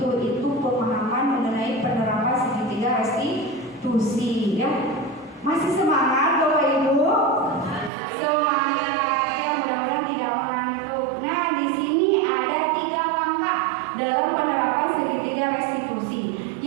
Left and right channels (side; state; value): left; drops out; at 7.9 s